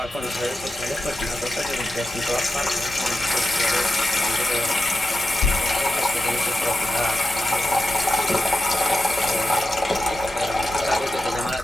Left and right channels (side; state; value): both; normal; correlation 0.90